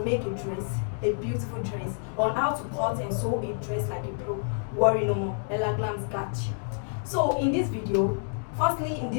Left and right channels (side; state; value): right; silent; digital silence